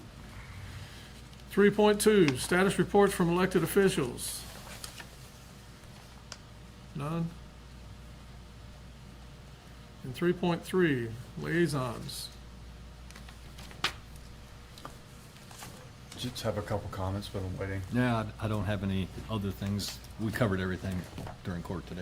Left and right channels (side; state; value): both; identical; correlation 1.00